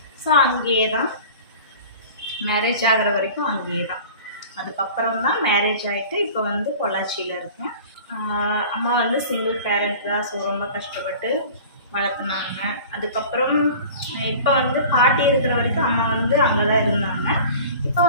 ஸோ அங்கேயே தான் மேரேஜ் ஆகிற வரைக்கும் அங்கேயே தான். அதுக்கப்புறம் தான் மேரேஜ் ஆகிட்டு இப்போ பொள்ளாச்சியில் இருக்கேன். அம்மா சிங்கிள் பேரண்ட் தான். ஸோ ரொம்ப கஷ்டப்பட்டு வளர்த்துனாங்க. அதுக்கப்புறம் இப்போ பாட்டி இருக்கிற வரைக்கும் அம்மா அங்கே தான் இருந்தாங்க. இப்போ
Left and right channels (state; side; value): inverted; both; correlation -0.41